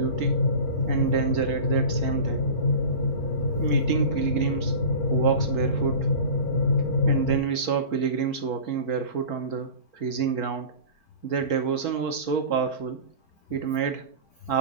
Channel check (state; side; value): late; right; 4.5 ms